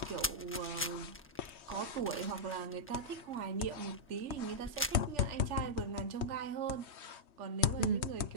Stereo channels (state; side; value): normal; both; correlation -0.11